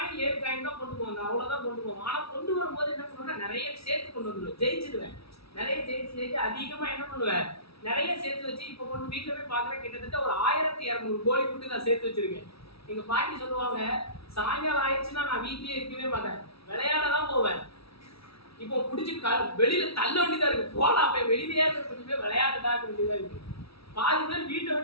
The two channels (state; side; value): late; right; 0.77 ms